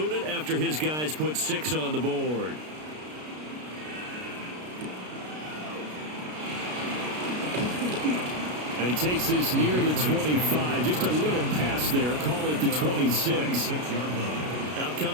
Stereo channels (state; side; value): late; left; 33 ms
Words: it after his guys put 6 on the board. And he takes this near the 25. Just a little pass there. Call it the 26. Out